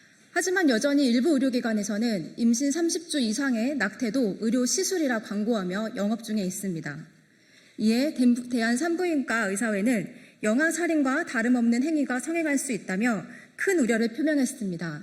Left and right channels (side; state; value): both; identical; correlation 1.00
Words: 하지만 여전히 일부 의료기관에서는 임신 30주 이상의 낙태도 의료 시술이라 광고하며 영업 중에 있습니다. 이에 대한산부인과 의사회는 영아살인과 다름없는 행위가 성행할 수 있다며 큰 우려를